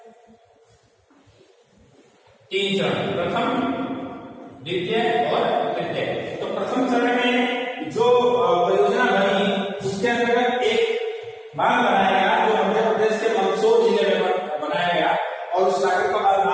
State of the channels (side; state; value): both; identical; correlation 1.00